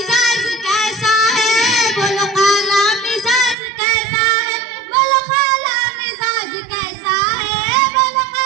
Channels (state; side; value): drops out; left; at 3.6 s